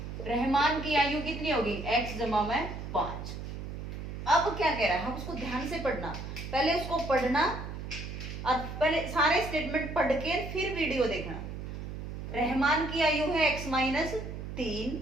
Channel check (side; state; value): right; noise; hum, 8 dB below the sound